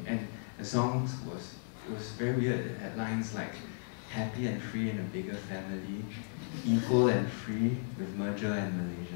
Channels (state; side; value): silent; right; digital silence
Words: And the songs it was very weird. It had lines like, happy and free in a bigger family, equal and free with merger and